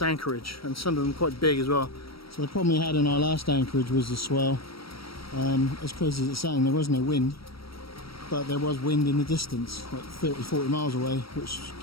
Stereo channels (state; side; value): late; right; 0.75 ms